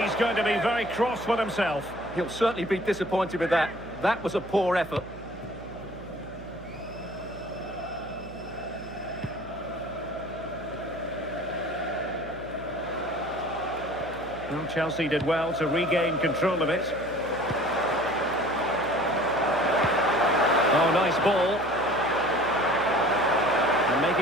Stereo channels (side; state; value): right; noise; hum, 16 dB below the sound